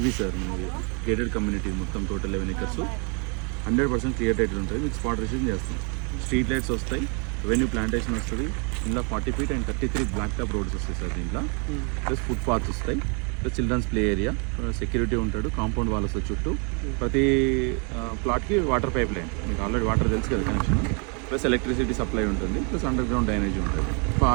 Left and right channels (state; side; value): quieter; left; 36.9 dB